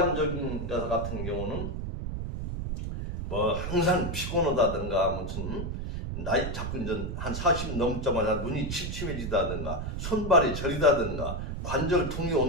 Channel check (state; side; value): noise; right; rumble, 4 dB below the sound